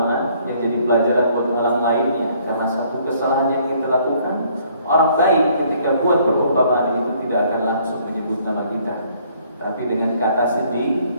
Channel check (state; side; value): inverted; both; correlation -0.62